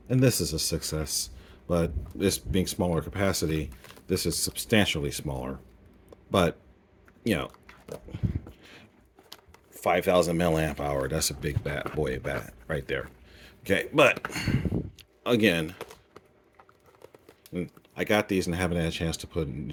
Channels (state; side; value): identical; both; correlation 1.00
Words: and this is a 6S, but this being smaller capacity, this is substantially smaller. But you know, 5000 milliamp hour, that's a big boy bat right there. Okay, but again, I got these and I haven't had a chance to put a